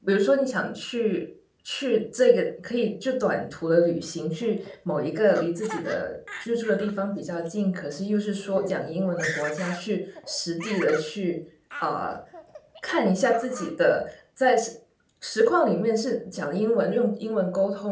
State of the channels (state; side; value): identical; both; correlation 1.00